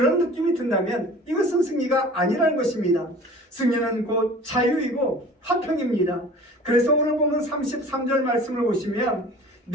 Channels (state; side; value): normal; both; correlation 0.44